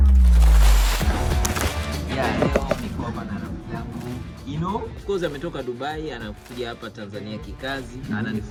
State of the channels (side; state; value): both; identical; correlation 1.00